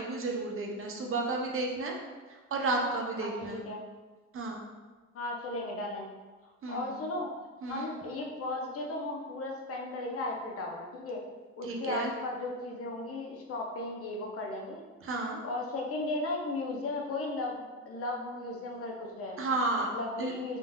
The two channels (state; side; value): normal; both; correlation 0.10